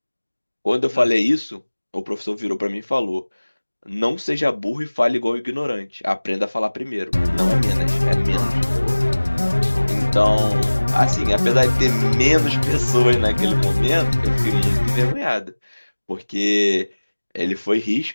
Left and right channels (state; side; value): inverted; both; correlation -1.00